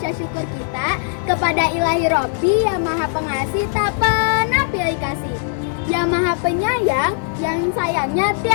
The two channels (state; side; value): silent; right; digital silence